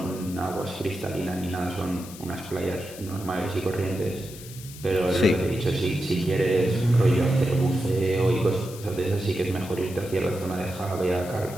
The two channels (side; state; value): left; noise; hiss, 16 dB below the sound